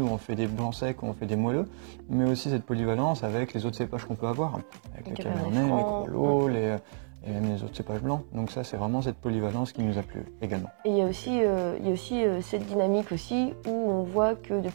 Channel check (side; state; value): left; silent; 58 dB below the other